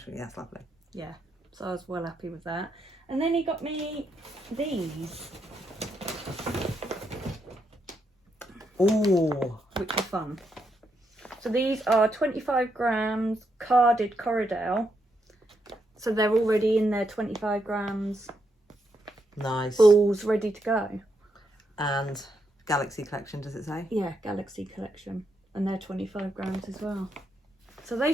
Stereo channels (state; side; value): normal; both; correlation 0.80